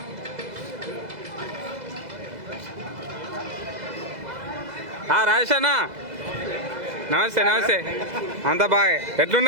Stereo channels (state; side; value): late; left; 2.0 ms